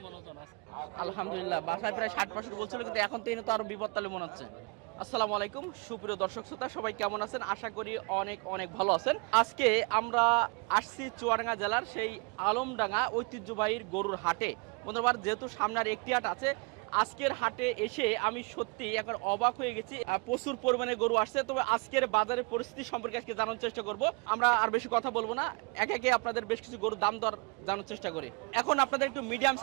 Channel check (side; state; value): left; quieter; 30.4 dB